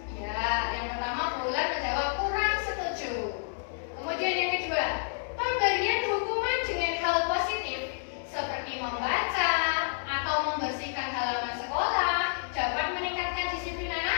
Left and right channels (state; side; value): silent; right; 58 dB below the other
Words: Ya, yang pertama Bulan menjawab kurang setuju. Kemudian yang kedua, pemberian hukuman dengan hal positif seperti membaca atau membersihkan halaman sekolah dapat meningkatkan disiplin